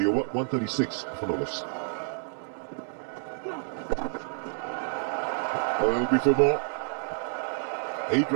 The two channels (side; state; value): left; silent; digital silence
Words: over. 136 for Nolas. That'll be for more. 8